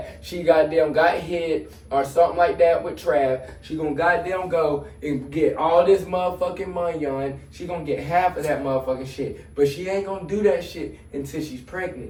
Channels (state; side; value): identical; both; correlation 1.00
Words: she goddamn got hit or something like that with Trav. She gonna goddamn go and get all this motherfucking money on. She gonna get half of that motherfucking shit. But she ain't gonna do that shit until she's